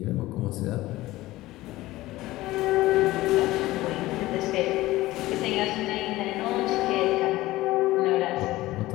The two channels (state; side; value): quieter; right; 17.5 dB